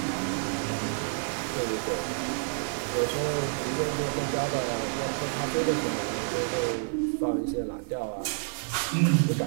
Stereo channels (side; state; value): left; silent; 58 dB below the other